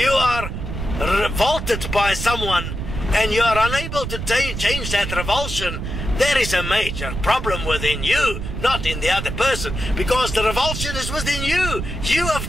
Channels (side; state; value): right; noise; rumble, 5 dB below the sound